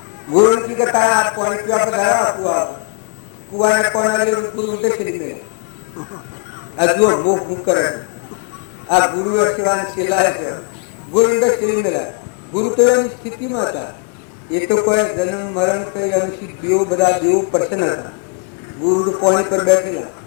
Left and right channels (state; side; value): quieter; right; 37.8 dB